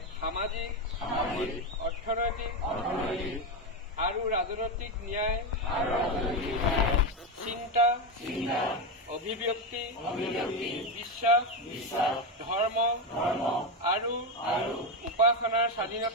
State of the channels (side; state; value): both; normal; correlation 0.12